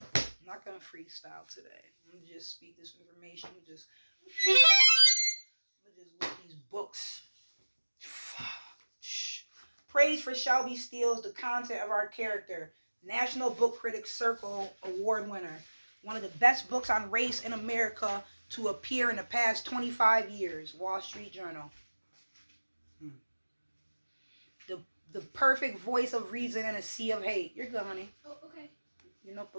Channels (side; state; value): both; inverted; correlation -1.00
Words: I'm not going to freestyle today. I'm going to just speak this information. I'm going to just look these books. Praise for Shelby Steele's The Content of Our Character. National Book Critics Circle Award winner. One of the best books on race in America to appear in the past 25 years. Wall Street Journal. The perfect voice of reason in a sea of hate. You're good, honey. Oh, okay. Your